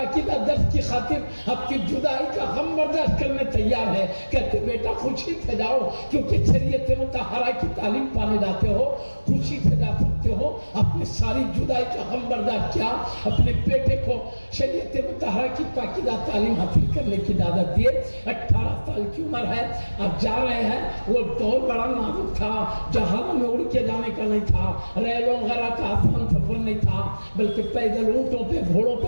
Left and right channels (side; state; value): both; inverted; correlation -1.00